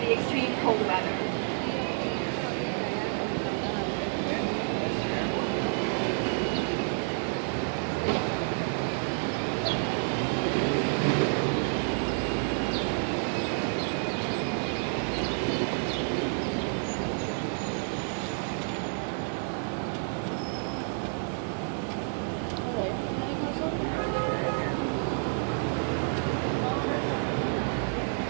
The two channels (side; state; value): left; silent; 58 dB below the other